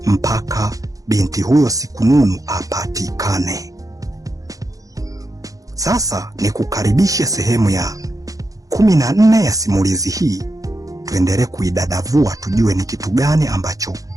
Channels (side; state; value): left; late; 0.17 ms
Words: mpaka binti huyo Sikununu apatikane. Sasa ni kukaribisha sehemu ya 14 ya simulizi hii. Tuendelee kuidadavua tujue ni kitu gani ambacho